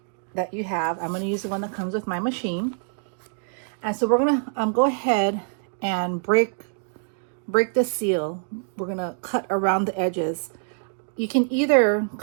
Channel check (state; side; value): silent; left; 62 dB below the other